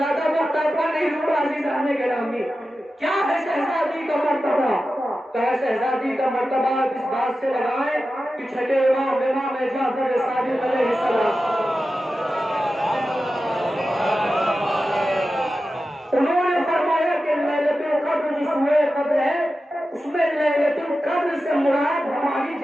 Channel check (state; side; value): normal; both; correlation 0.93